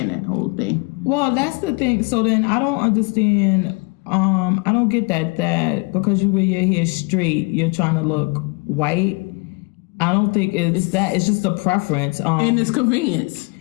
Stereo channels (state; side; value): quieter; right; 29.0 dB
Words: that whole thing. Well, that's the thing. So then I don't understand. I don't get that because you wear your hair straight, you're trying to look white. I don't think it's that. It's just a preference. And it's convenience.